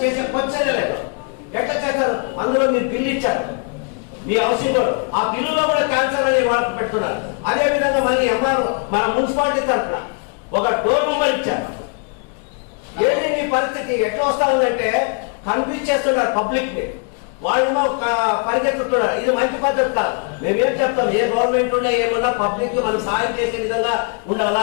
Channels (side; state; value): right; quieter; 38.5 dB